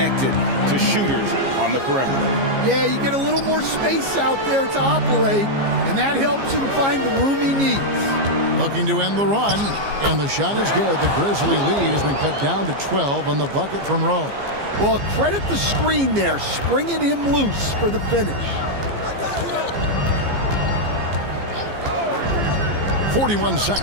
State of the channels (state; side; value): late; left; 15 ms